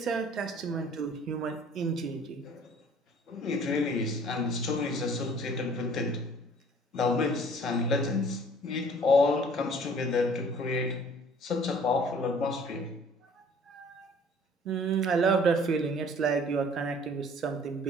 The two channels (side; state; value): both; normal; correlation 0.53